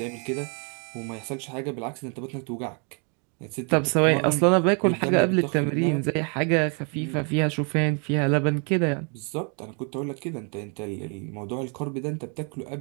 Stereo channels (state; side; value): quieter; left; 37.7 dB